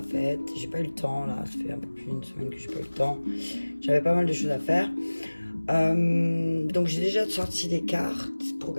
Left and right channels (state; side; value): inverted; both; correlation -1.00